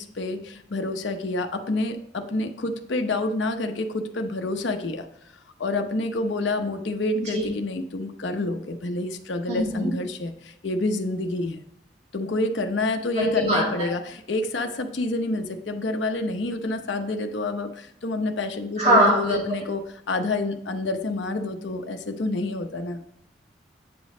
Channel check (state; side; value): normal; both; correlation 0.32